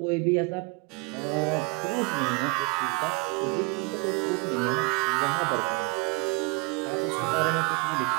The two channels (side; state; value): left; quieter; 27.7 dB